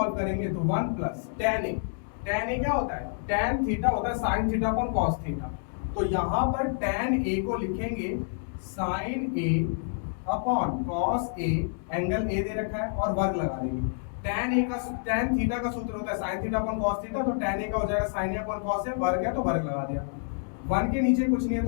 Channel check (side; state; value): right; silent; digital silence